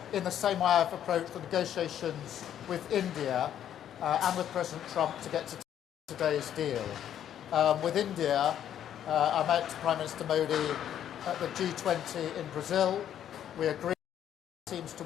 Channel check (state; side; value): quieter; right; 10.2 dB